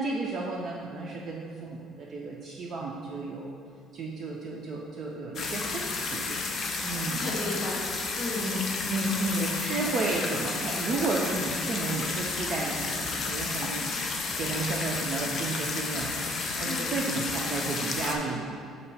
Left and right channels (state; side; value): normal; both; correlation 0.61